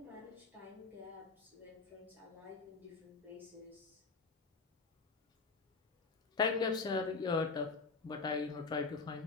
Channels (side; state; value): right; quieter; 4.4 dB